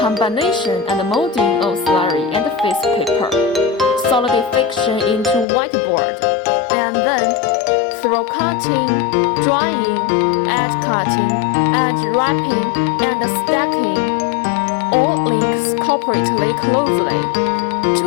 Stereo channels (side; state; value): right; drops out; at 5.5 s